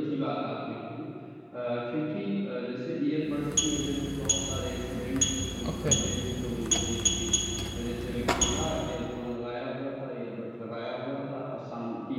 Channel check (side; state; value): both; identical; correlation 1.00